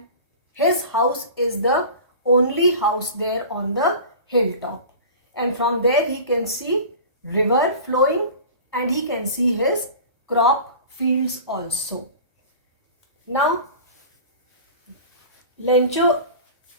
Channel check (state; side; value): inverted; both; correlation -0.38